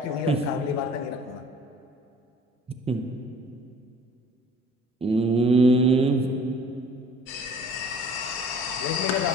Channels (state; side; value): normal; both; correlation 0.50